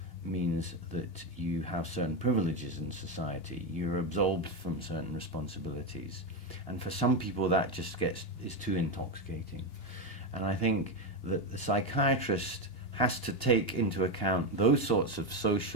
means that you have certain privileges in society. You're absolved from certain responsibilities. And for some people that just is too intoxicating. And I think that the psychiatrist has to take into account those sorts of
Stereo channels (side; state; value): right; late; 2.8 ms